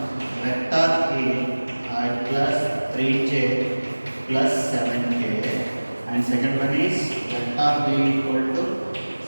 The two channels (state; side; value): inverted; both; correlation -1.00